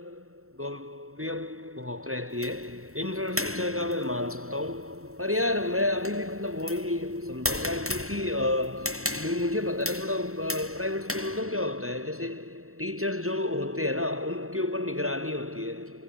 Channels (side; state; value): left; late; 0.63 ms